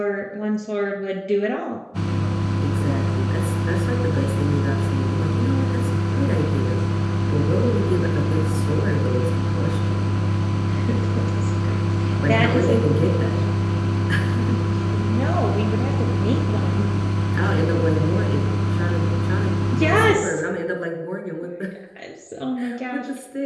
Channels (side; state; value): both; identical; correlation 1.00